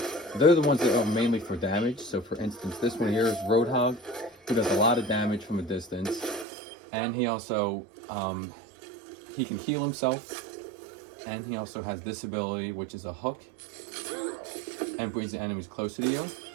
They're the ones that are mainly for damage. So for instance, this one here is Roadhog, who does a lot of damage from a distance. And he also, he can heal himself. And he also has this ability, which is a hook, and brings the enemies closer to you.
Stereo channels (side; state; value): left; drops out; at 6.5 s